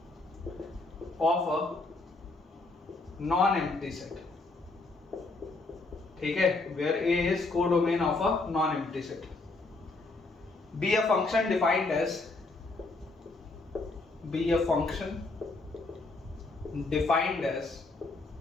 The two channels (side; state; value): right; quieter; 3.3 dB